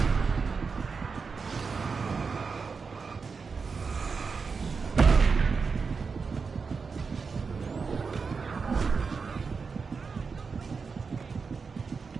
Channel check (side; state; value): left; quieter; 5.1 dB